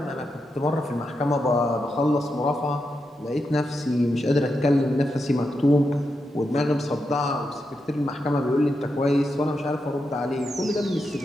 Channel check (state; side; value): normal; both; correlation 0.86